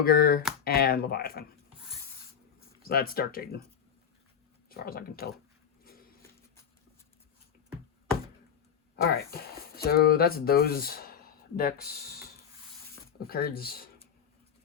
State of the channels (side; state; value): right; quieter; 7.9 dB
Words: and Leviathan. So that's Dark Jaden, as far as I can tell. Alright, so that's those decks of cards.